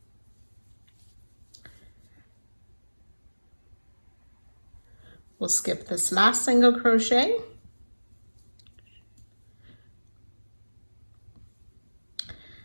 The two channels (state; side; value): inverted; both; correlation -1.00